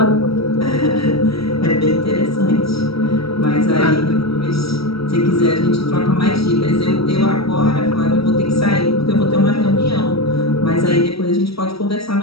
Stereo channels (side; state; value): right; late; 0.76 ms